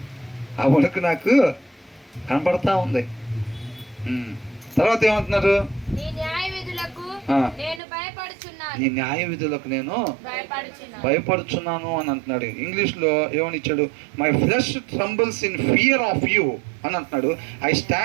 ఆ వణుకు నాకు కనపడతా ఉంది. తర్వాత ఏమంటున్నారు? నీ న్యాయ విధులకు నేను భయపడుచున్నాను అని అంటున్నాడు. ఇంగ్లీష్లో ఏమని ఇచ్చాడు? My flesh trembles in fear of you అని అంటున్నాడు. I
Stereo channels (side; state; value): left; drops out; at 7.8 s